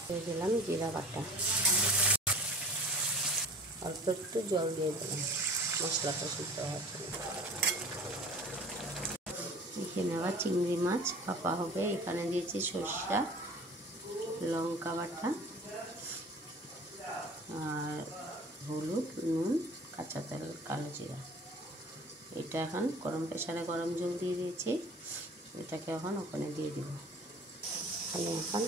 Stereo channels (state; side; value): normal; both; correlation 0.43